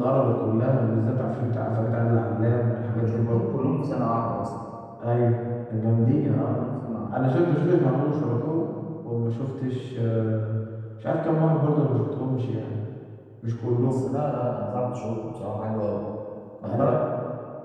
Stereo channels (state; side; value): identical; both; correlation 1.00